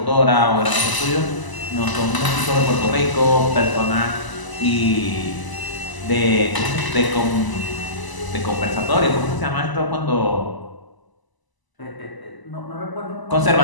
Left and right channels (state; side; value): late; right; 1.0 ms